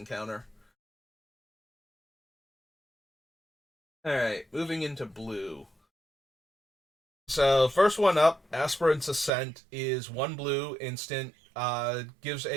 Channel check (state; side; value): drops out; left; at 9.3 s